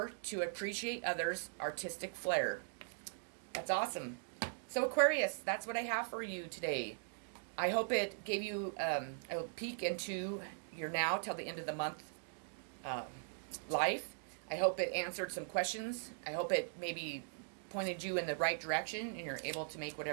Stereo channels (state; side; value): silent; left; digital silence